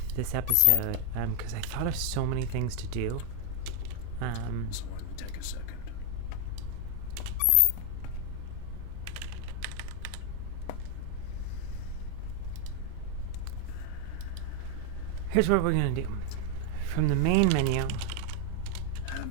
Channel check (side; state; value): both; different; correlation 0.00